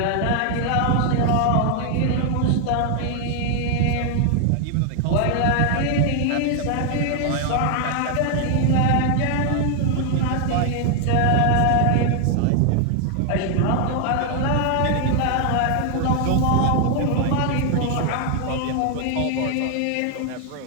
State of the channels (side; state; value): both; different; correlation 0.00